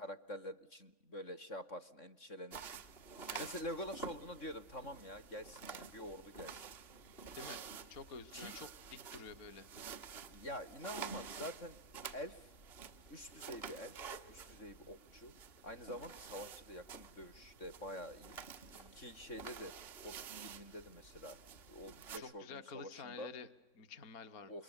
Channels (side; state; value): right; late; 3.6 ms